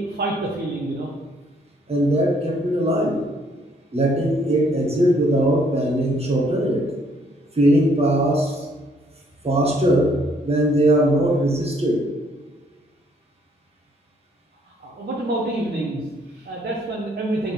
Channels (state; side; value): normal; both; correlation 0.66